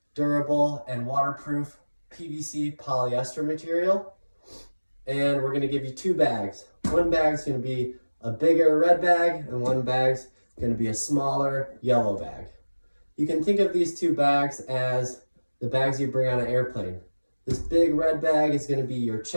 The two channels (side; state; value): both; inverted; correlation -1.00